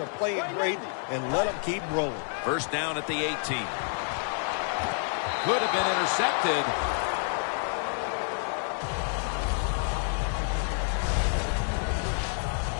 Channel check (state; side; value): silent; right; 57 dB below the other